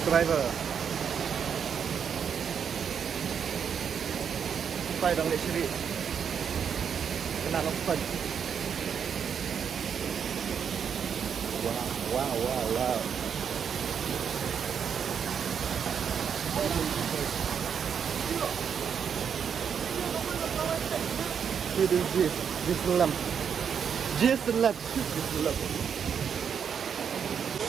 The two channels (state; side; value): quieter; left; 7.4 dB